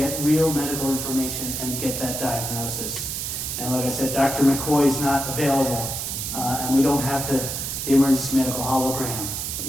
real medical information, and get that diagnosis. And like I said, Dr. McCoy is not available, and we don't have the emergency medical hologram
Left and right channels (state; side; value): noise; right; hiss, 4 dB below the sound